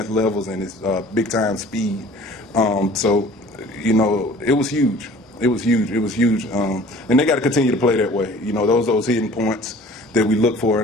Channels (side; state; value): both; normal; correlation 0.48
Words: levels and his big-time speed. So, you know, it was huge. It was huge. It was huge. And they got to continue to play that way. You know, those hidden points that we look for